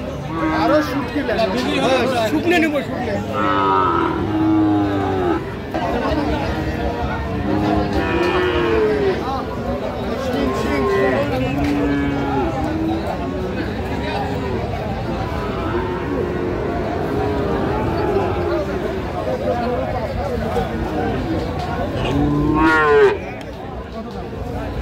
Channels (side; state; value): both; identical; correlation 1.00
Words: আরো শুকনে নেব, শুকনে।